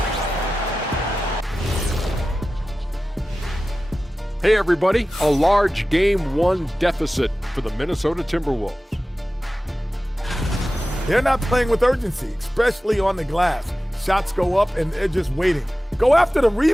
Hey everybody, a large Game 1 deficit for the Minnesota Timberwolves. They're not playing with urgency, especially on the glass. Shots go up and they're just waiting. Go after the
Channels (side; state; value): both; normal; correlation 0.95